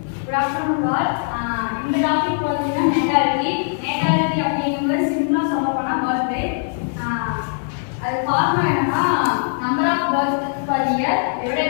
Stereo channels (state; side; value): silent; right; digital silence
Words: Good afternoon, all. இந்த topic பார்த்தீங்கன்னா natality அப்படிங்கிறது சிம்பிளா சொல்ல போனா birth rate. அது காரணம் என்னன்னா number of birth per year